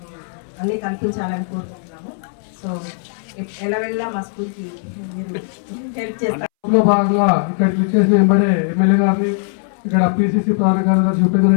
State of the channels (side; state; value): right; silent; 65 dB below the other